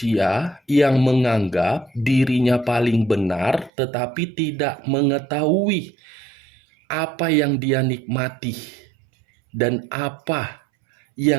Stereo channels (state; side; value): drops out; left; at 3.7 s